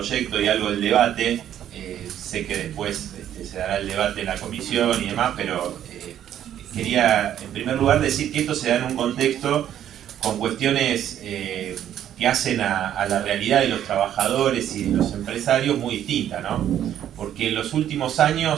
y algo del debate, sé que después se dará el debate en la comisión y demás, pero quería en primer lugar decir que esto se da en un contexto con cuestiones que hacen a la realidad de los trabajadores y de los empresarios muy distinta, ¿no? Porque en los últimos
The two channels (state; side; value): quieter; left; 10.7 dB